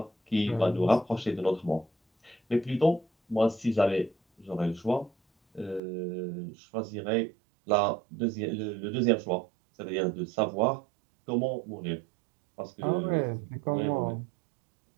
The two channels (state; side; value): drops out; left; at 5.8 s